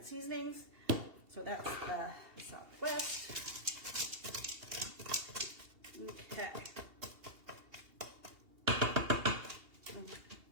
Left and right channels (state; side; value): late; left; 2.8 ms